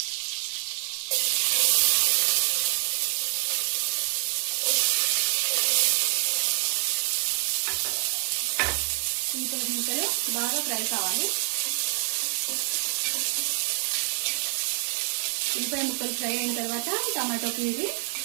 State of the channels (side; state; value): left; silent; 60 dB below the other